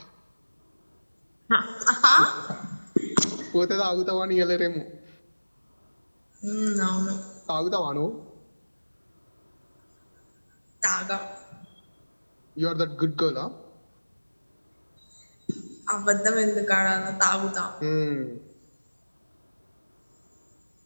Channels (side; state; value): both; inverted; correlation -1.00